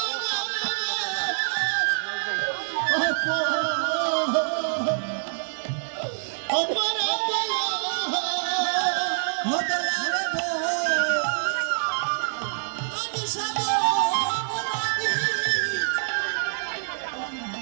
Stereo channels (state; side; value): silent; left; digital silence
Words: করে আপনি কাটছিল তাহলে আপনার যাইতো